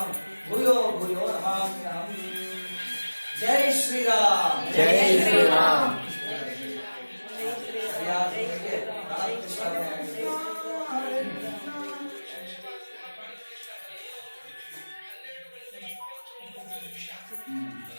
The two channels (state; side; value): inverted; both; correlation -1.00